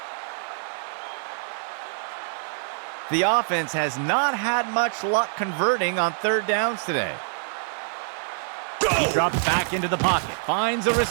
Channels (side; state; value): left; silent; 61 dB below the other